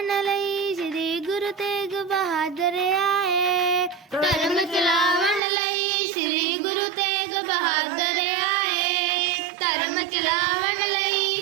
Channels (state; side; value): drops out; left; at 5.4 s